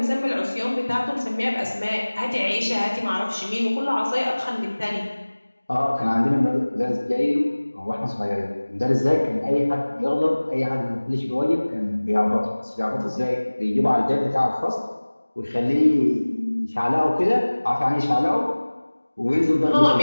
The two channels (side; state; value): both; inverted; correlation -1.00